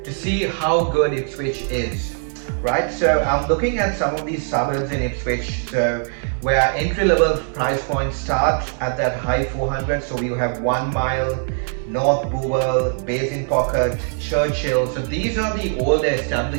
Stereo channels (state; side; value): silent; left; 63 dB below the other